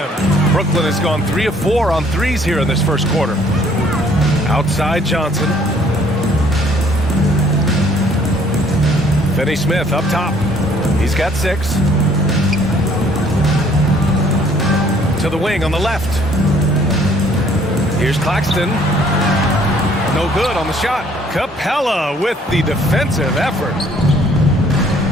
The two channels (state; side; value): normal; both; correlation 0.60